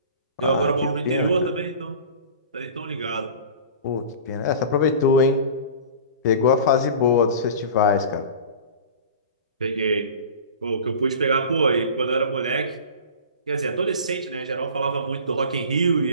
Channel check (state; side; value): inverted; both; correlation -0.39